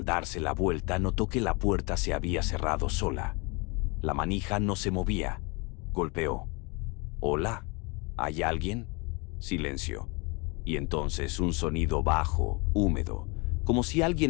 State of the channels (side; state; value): right; quieter; 29.3 dB